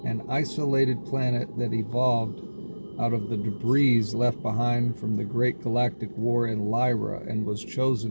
an isolated planet that evolved out of the debris left behind from the Great Galactic War in Lyra and was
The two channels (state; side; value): inverted; both; correlation -1.00